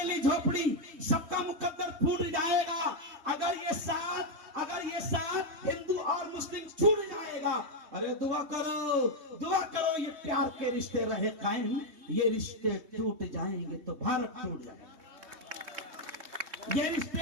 झोपड़ी सबका मुकद्दर फूट जाएगा अगर ये साथ हिंदू और मुस्लिम छूट जाएगा। अरे दुआ करो ये प्यार के रिश्ते रहे कायम, ये रिश्ते टूट जाएंगे तो भारत टूट जाएगा। ये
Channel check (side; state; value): left; late; 3.2 ms